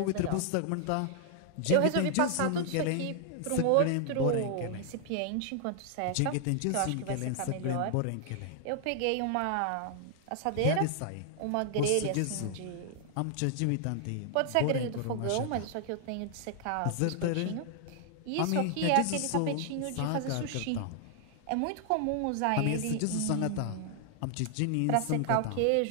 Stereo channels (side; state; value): both; different; correlation 0.00